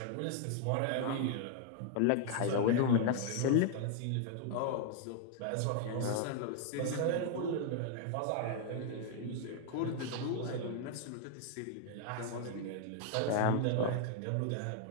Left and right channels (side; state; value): both; different; correlation 0.00